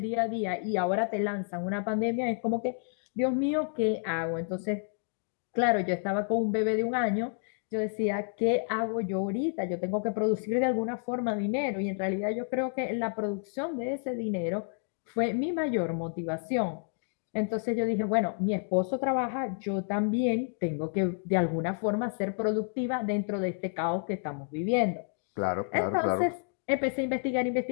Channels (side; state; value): right; silent; 58 dB below the other